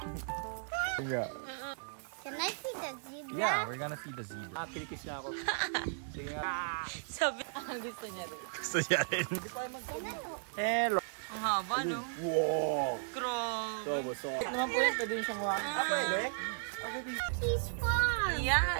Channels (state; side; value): silent; left; 54 dB below the other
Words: Yeah. Can I see the zebra? Yeah, we're gonna see the zebra. Kilikis na ako. Sige nga. Sabi, gusto niya rin. Gusto niya rin. Hello. Ang haba, no? Wow. Grabe. So. Naman po yan, pwede yung siyang wakan. He's fun.